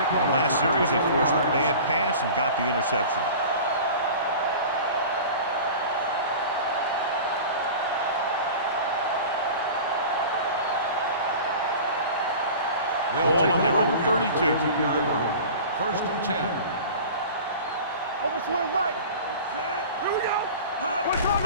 the last series, they forced a bad pass and got the interception. Ball on their own 32. 32-yard line. First and 10. Over swing right. Here we go.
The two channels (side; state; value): both; inverted; correlation -0.37